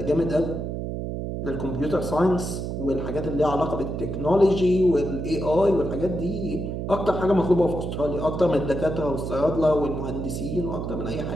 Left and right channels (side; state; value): right; noise; hum, 4 dB below the sound